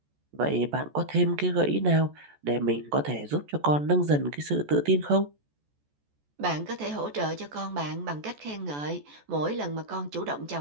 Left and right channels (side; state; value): left; late; 14 ms